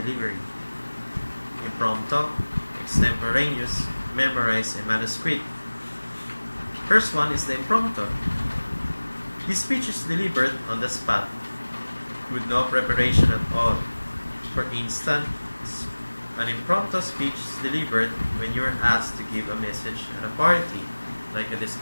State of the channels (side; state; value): both; inverted; correlation -1.00